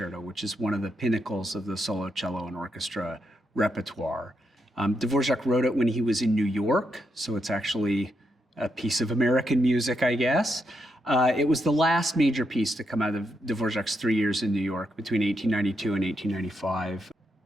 which is one of the pinnacles of the solo cello and orchestra repertoire. Dvořák wrote it when he was in New York, so it's actually a piece of American music, I guess. It was the last major piece to come out of Dvořák's 3 years in New York between 1892 and 1895.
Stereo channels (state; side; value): normal; both; correlation 0.81